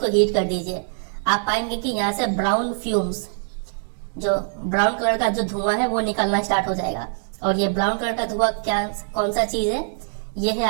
हीट कर दीजिए। आप पाएंगे कि यहाँ से ब्राउन फ्यूम्स, जो ब्राउन कलर का जो धुआं है वो निकलना स्टार्ट हो जाएगा। और ये ब्राउन कलर का धुआं क्या, कौन सा चीज है? ये है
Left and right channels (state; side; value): silent; left; digital silence